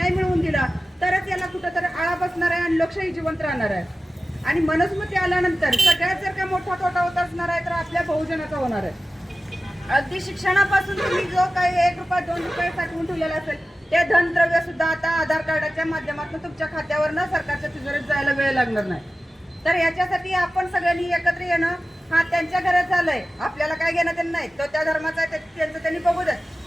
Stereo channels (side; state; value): both; normal; correlation 0.95